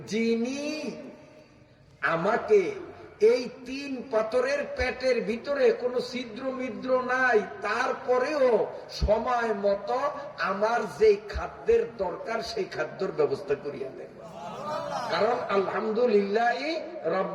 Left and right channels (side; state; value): both; identical; correlation 1.00